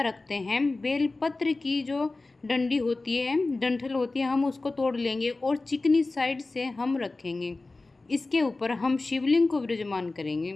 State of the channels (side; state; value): right; quieter; 3.3 dB